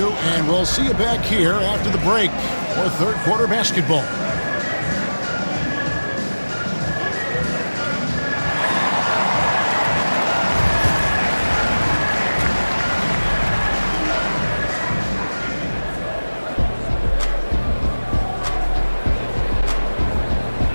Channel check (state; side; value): inverted; both; correlation -1.00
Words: and we'll see you back here after the break for third quarter basketball.